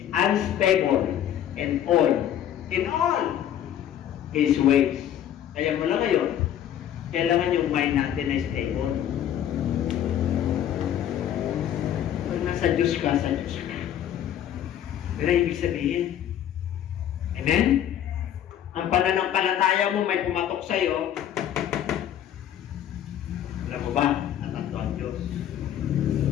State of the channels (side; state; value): right; quieter; 10.6 dB